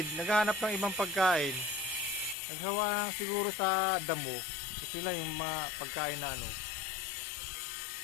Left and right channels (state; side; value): drops out; right; at 2.4 s